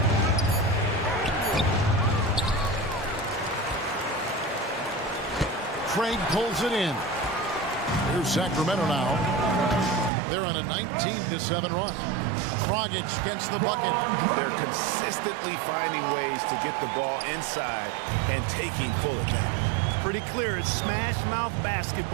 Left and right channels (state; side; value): drops out; left; at 10.1 s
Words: Craig pulls it in. Here's Sacramento now. They're on a 19-7 run. Dragic gets the bucket. They're consistently finding ways to get the ball inside and taking full advantage. Pretty clear. It's smash mouth